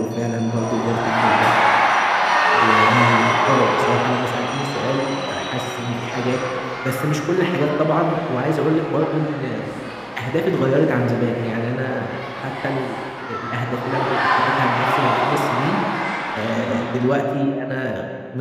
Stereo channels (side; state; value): both; identical; correlation 1.00